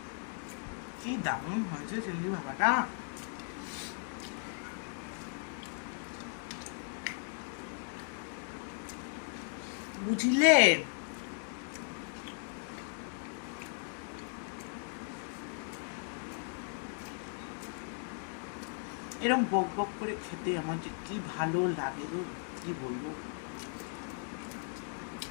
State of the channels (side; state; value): right; silent; 53 dB below the other